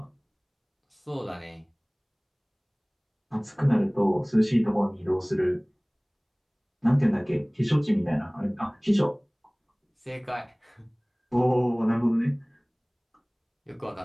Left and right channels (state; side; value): identical; both; correlation 1.00